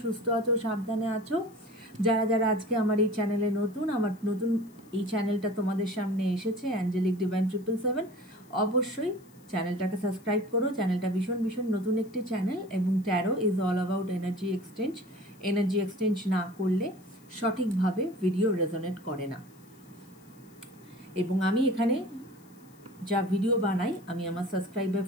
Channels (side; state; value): left; noise; hiss, 29 dB below the sound